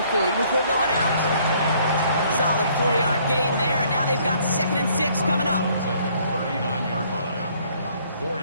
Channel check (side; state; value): both; inverted; correlation -0.62